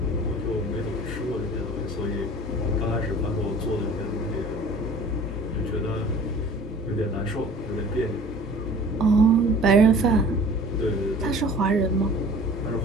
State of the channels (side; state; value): both; normal; correlation 0.46